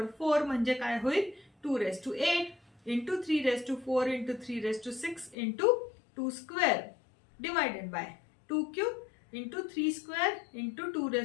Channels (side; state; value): right; drops out; at 5.4 s